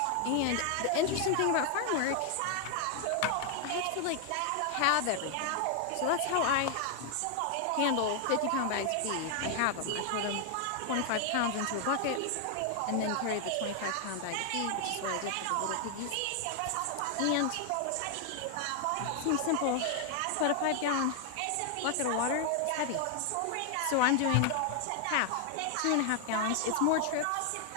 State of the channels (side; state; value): both; different; correlation 0.00